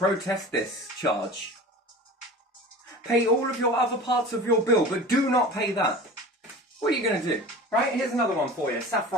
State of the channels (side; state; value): both; normal; correlation 0.37